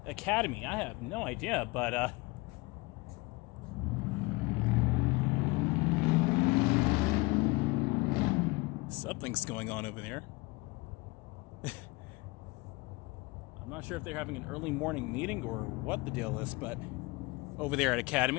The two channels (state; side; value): quieter; right; 23.9 dB